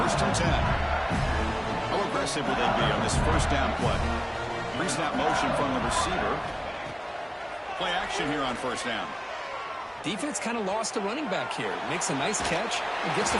1st and 10. How aggressive will they be on this first down play? Pre-snap motion from the receiver. Play action here on first down. Defense kind of lost the running back here. Makes a nice catch and gets the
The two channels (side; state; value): both; identical; correlation 1.00